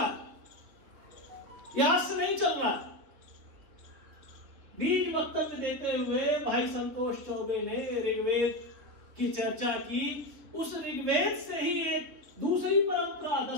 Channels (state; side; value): late; left; 3.5 ms